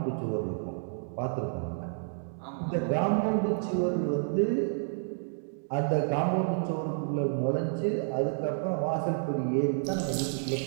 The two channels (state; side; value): silent; left; digital silence